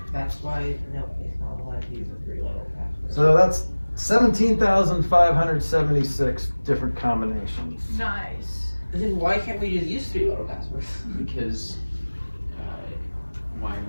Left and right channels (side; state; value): both; inverted; correlation -1.00